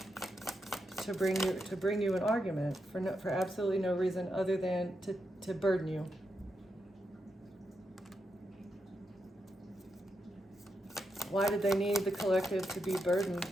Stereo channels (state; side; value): normal; both; correlation 0.84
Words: to bring you an argument for absolutely no reason other than to burden you. Why did they need the collective to be burdened